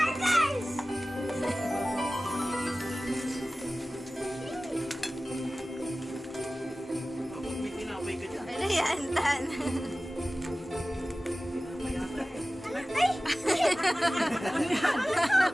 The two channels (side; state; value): both; normal; correlation 0.97